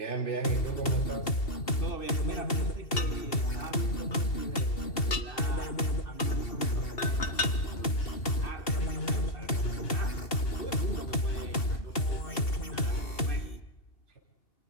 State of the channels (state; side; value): late; right; 2.7 ms